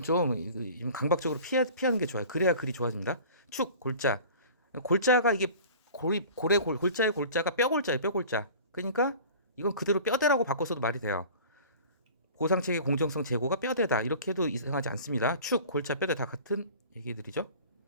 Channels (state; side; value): inverted; both; correlation -0.42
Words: 좀 강박적으로 피하는 게 좋아요. 그래야 글이 좋아집니다. 축, 골자. 골자가 이게 골자의 골자가 뼈골자예요. 뼈골자. 그러니까 이건 그대로 뼈대라고 바꿔서도 말이 돼요. 보상체계 공정성 제고가 뼈대다. 이렇게 해도 이상하지 않습니다. 축, 골자, 뼈대 다 같은 얘기들이죠.